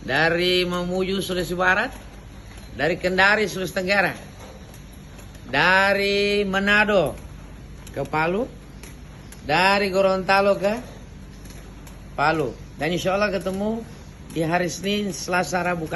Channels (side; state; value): both; identical; correlation 1.00